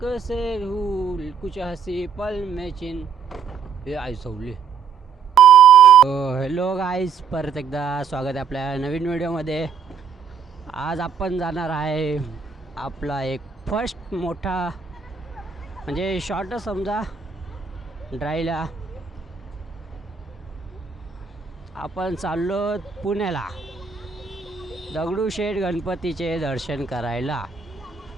से भूल, कुछ हंसी पल में चिन हे आई सवली. हॅलो गाईज, परत एकदा स्वागत आहे आपल्या नवीन व्हिडिओमध्ये. आज आपण जाणार आहे आपला एक फर्स्ट मोठा म्हणजे शॉर्ट समजा ड्राईव्हला. आपण चाललो पुण्याला दगडूशेठ गणपतीचे दर्शन करायला.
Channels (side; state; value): left; quieter; 6.6 dB